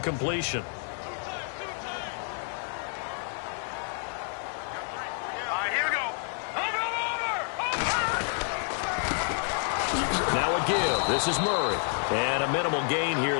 This is Murray. And a minimal gain here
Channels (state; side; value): silent; right; 58 dB below the other